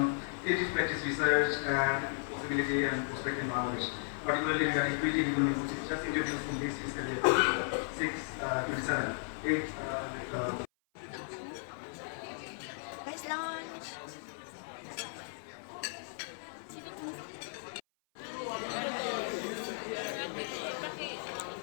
its practice research and possibility and prospect in Bangladesh, particularly regarding creative economy, which is just introduced in this fiscal year 6-27. Nice lunch.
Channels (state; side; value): silent; right; 54 dB below the other